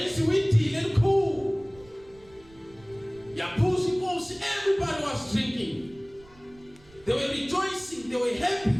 she went to cool, Yapusi ghost, everybody was drinking. They were rejoicing, they were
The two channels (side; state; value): right; noise; rumble, 26 dB below the sound